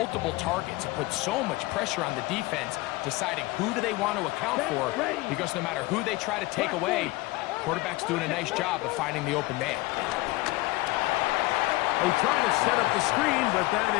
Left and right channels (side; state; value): right; quieter; 20.6 dB